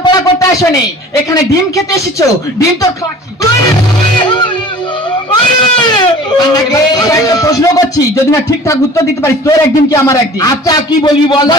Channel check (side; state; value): both; normal; correlation 0.45